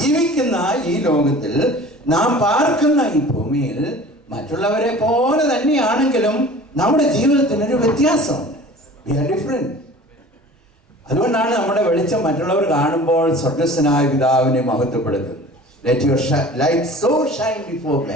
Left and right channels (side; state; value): both; normal; correlation 0.43